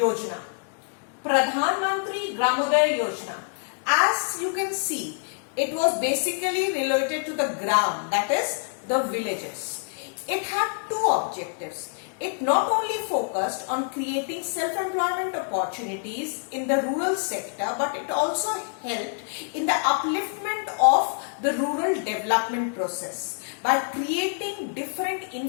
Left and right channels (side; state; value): right; silent; 61 dB below the other